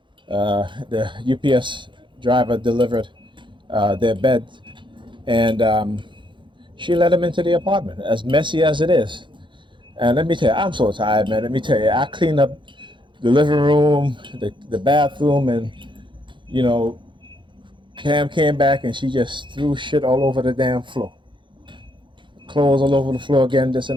The UPS driver delivered their bed, and she let him into the apartment, as messy as it is. And let me tell you, I'm so tired, man. Let me tell you, I cleaned up the living room, the bathroom, and you know, Cam came back and she just threw shit all over the damn floor. Clothes all over the floor again, this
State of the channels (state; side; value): late; left; 0.23 ms